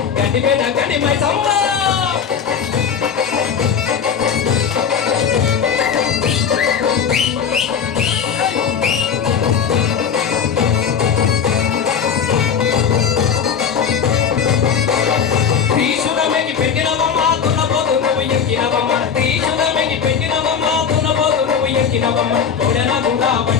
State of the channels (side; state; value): right; quieter; 7.2 dB